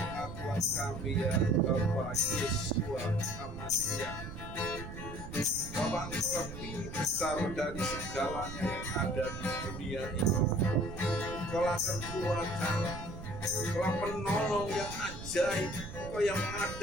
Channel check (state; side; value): noise; right; rumble, 10 dB below the sound